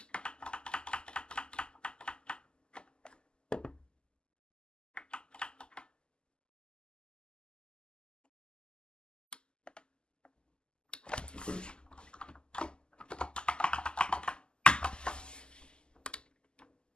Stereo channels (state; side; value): late; right; 0.048 ms